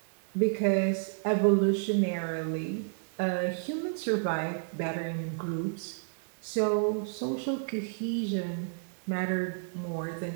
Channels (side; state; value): left; silent; digital silence